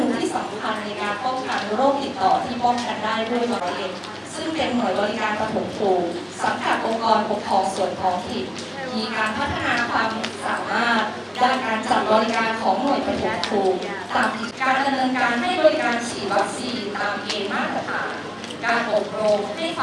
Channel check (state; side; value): identical; both; correlation 1.00